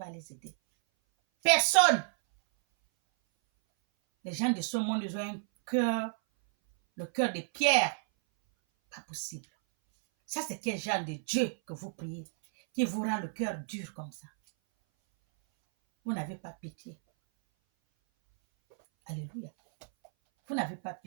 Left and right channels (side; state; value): left; silent; 57 dB below the other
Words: les aider. Personne! Les gens de ce monde, ils ont un cœur, le cœur de pierre. Pas possible. Ça, c'est quel genre de Dieu que vous priez, qui vous rend le cœur dur comme ça? Vous n'avez pas pitié. Alléluia. Vous n'avez pas